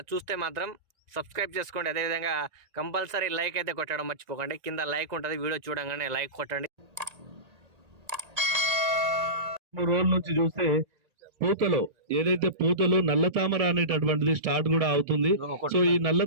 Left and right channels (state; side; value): late; left; 1.8 ms